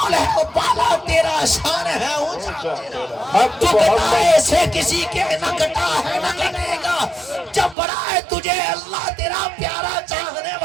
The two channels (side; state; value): left; drops out; at 7.8 s